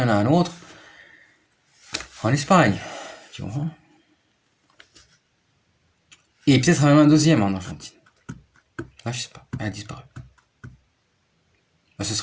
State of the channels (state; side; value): identical; both; correlation 1.00